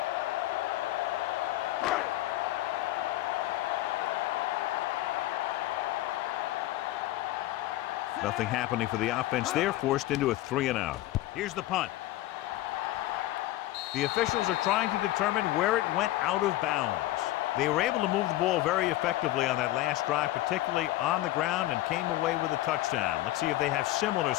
Nothing happening for the offense. They're forced into a 3-and-out. Here's the punt. The officials are trying to determine where it went out of bounds. They were able to move the ball very effectively on that last drive, particularly on the ground, and came away with a touchdown. Let's see if they have similar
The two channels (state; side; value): quieter; right; 16.1 dB